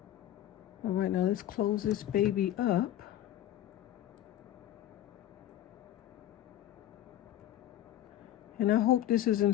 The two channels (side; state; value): right; quieter; 12.6 dB